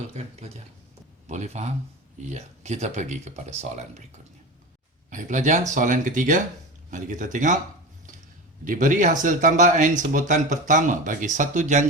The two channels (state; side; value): normal; both; correlation 0.27